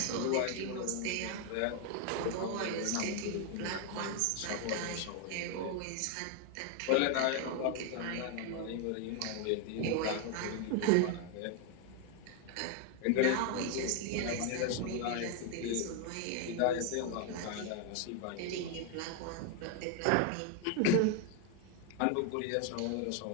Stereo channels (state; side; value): different; both; correlation 0.01